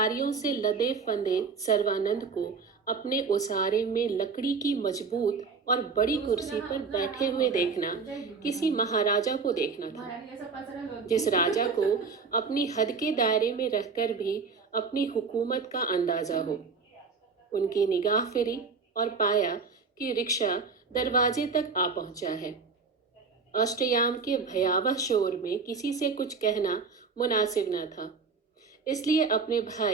से लदे फंदे सर्वानंद को अपने ओसारे में लकड़ी की मजबूत और बड़ी तो उसको कुर्सी नहा पर उतना बैठे आराम हुए होगा, देखना हो जाएगी वो किसी नहा। महाराजा को देखना था, महारानी ऐसा पसरा जिस होती। राजा को अपनी हद के दायरे में रहकर भी अपनी हुकूमत का अंदाजा हो। उनकी निगाह फिरी और पाया कि रिक्शा दरवाजे तक आ पहुंचा है। अष्टयाम के भयावह शोर में किसी से कुछ कहना मुनासिब न था, इसलिए अपने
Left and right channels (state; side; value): quieter; left; 4.9 dB